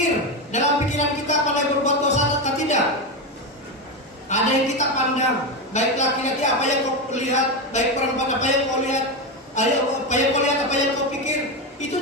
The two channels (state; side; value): normal; both; correlation 0.13